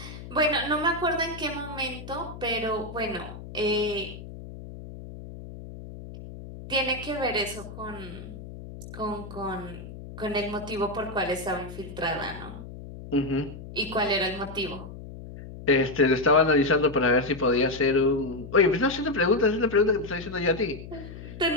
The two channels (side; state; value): left; noise; hum, 13 dB below the sound